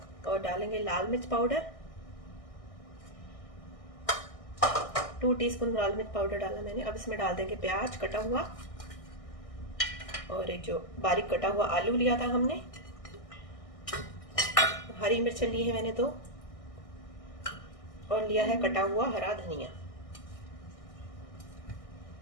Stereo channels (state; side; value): late; right; 1.6 ms